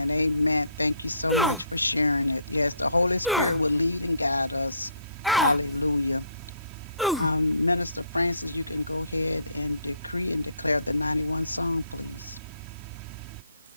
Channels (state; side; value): inverted; both; correlation -0.65